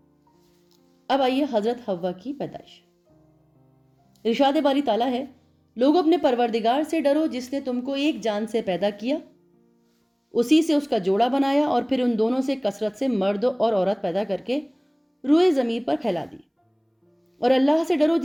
اب آئیے حضرت حوا کی پیدائش۔ ارشاد باری تعالیٰ ہے، لوگوں اپنے پروردگار سے ڈرو جس نے تم کو ایک جان سے پیدا کیا، اسی سے اس کا جوڑا بنایا اور پھر ان دونوں سے کثرت سے مرد اور عورت پیدا کر کے روئے زمین پر پھیلا دی۔ اور اللہ سے ڈرو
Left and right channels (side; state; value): both; identical; correlation 1.00